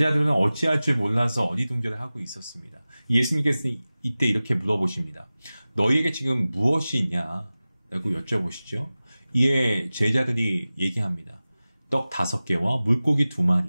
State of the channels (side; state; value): both; inverted; correlation -0.97